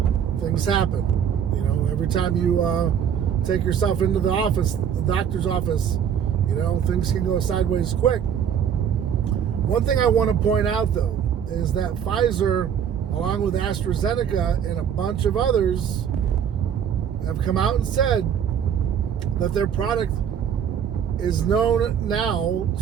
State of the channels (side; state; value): left; quieter; 8.4 dB